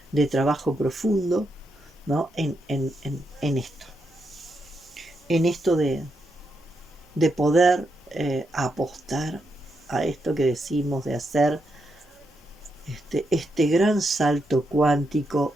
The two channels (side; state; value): both; normal; correlation 0.82